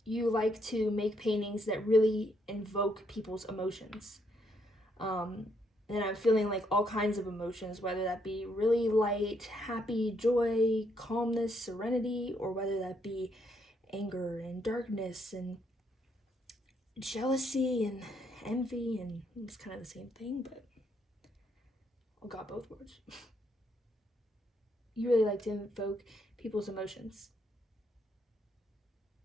you like to make paintings that really invoke people's emotions. And I'm feeling like all kinds of emotions, whether that be really light, happy, joy, calmness, serenity, or whether that be anger and darkness and jealousy and envy, and it's kind of the same thing, but I got both words. You really like to invoke people's emotions.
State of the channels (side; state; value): both; normal; correlation 0.74